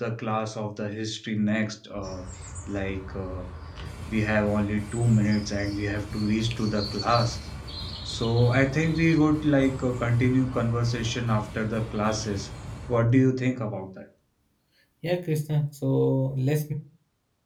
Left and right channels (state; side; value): identical; both; correlation 1.00